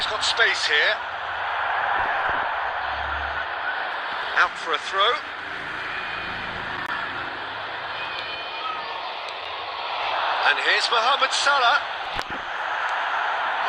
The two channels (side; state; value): both; identical; correlation 1.00